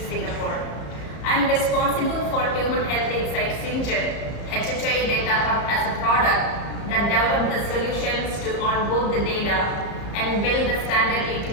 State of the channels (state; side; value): late; right; 34 ms